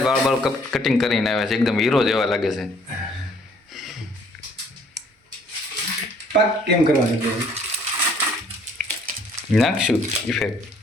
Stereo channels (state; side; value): normal; both; correlation 0.60